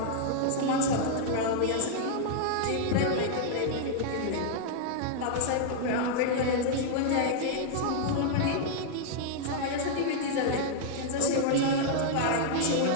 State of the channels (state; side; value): different; both; correlation -0.01